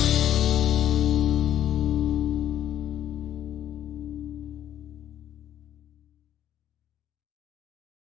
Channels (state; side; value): quieter; right; 11.2 dB